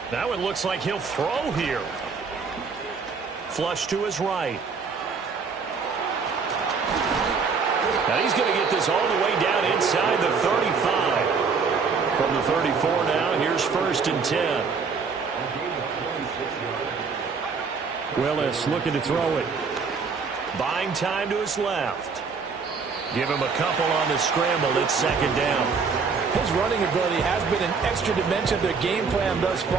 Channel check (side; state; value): left; quieter; 5.2 dB